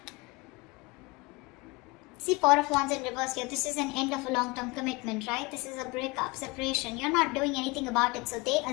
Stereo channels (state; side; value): quieter; right; 25.1 dB